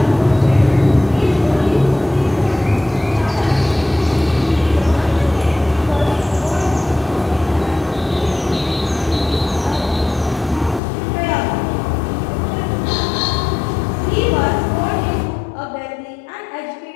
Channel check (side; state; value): right; drops out; at 10.8 s